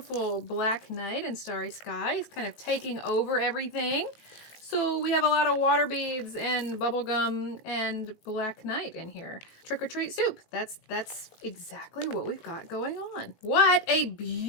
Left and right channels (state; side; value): late; right; 19 ms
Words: black night and starry sky is kind of taking over everything. So we have a lot of water beads and bubblegum and black night in here. Trick or treat soup. That's exactly what we've got going on. What a